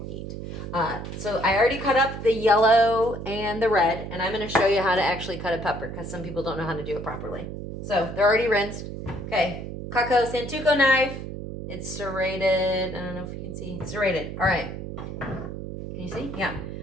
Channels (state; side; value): noise; right; hum, 8 dB below the sound